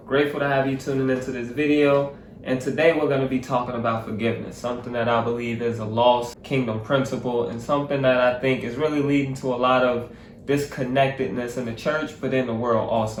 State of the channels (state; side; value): identical; both; correlation 1.00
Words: Grateful to have you tuning into this video. And today we're going to be talking about forgiveness, something that I believe is a lost kingdom principle and something that I think is really leading to a lot of disconnectedness in the church, but in the world